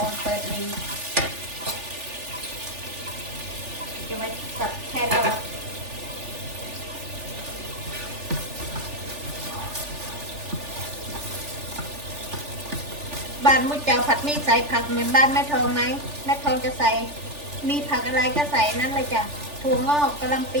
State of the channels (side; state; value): left; late; 3.4 ms